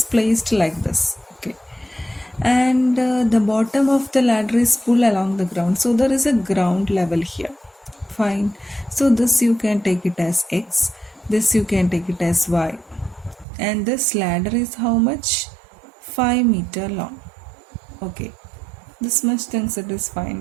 placed like this. Okay, and the bottom of the ladder is pulled along the ground. So there is a ground level here. Fine. So this you can take it as X. This you can take it as Y. And this ladder is how much? 5 meter long. Okay, this much things it is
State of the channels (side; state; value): left; drops out; at 13.5 s